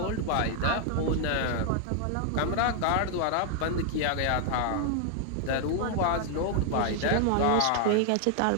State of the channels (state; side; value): different; both; correlation 0.00